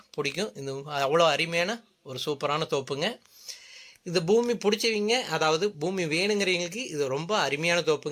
பிடிக்கும். இது அவ்வளோ அருமையான ஒரு சூப்பரான தோப்புங்க. இந்த பூமி பிடிச்சவங்க, அதாவது பூமி வேணுங்கிறவங்களுக்கு இது ரொம்ப அருமையான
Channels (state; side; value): identical; both; correlation 1.00